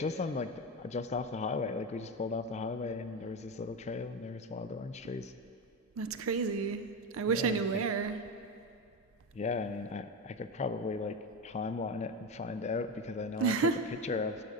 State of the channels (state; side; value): normal; both; correlation 0.17